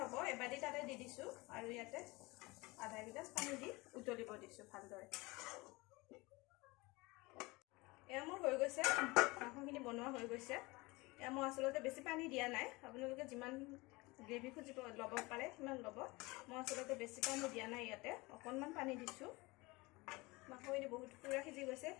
এবাটি তাতে দি দিছোঁ আৰু ইয়াতে আধা গিলাচ পানী দি উতলিব দিছোঁ ভালদৰে এয়া মোৰ হৈ গৈছে মাংসখিনি বনোৱা হৈ গৈছে এয়া মই আচলতে বেছি পানী দিয়া নাই আপোনালোকে যিমান গ্ৰেভি খুজিব ল'ব পাৰে সিমান ল'ব মই আচলতে বেছি পানী দিয়া নাই ইয়াতে অকণমান পানী দিছোঁ মাংসখিনি বহুত পুৰা সিজি গৈছে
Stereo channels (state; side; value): quieter; right; 23.5 dB